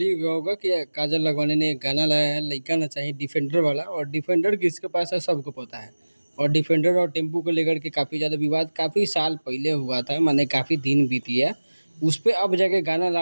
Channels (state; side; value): inverted; both; correlation -1.00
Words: ही गया होगा कि काजल लखवानी ने एक गाना लाया है, लइका ना चाहिए डिफेंडर वाला। और डिफेंडर किसके पास है सबको पता है। और डिफेंडर और टेम्पू को लेकर के काफ़ी ज़्यादा विवाद काफ़ी साल पहले हुआ था, माने काफ़ी दिन बीती है। उस पे अब जाके गाना